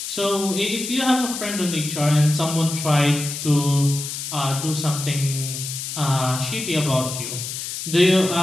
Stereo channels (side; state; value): left; noise; hiss, 6 dB below the sound